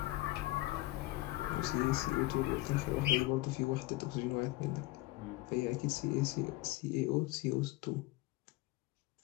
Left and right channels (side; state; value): right; quieter; 19.6 dB